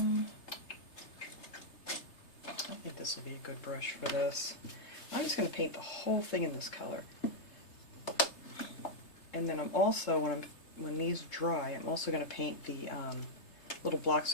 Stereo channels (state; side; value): late; right; 3.3 ms